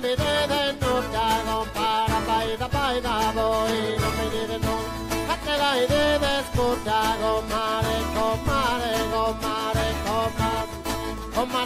vedete nulla, compara, baita, voi non vedete nulla. Fatte la idea scorda, comare, comare, comare, comare,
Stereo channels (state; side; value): identical; both; correlation 1.00